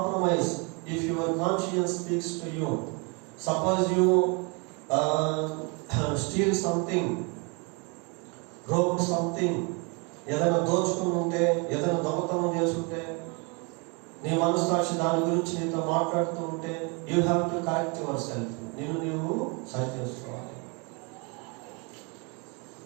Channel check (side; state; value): left; quieter; 31.9 dB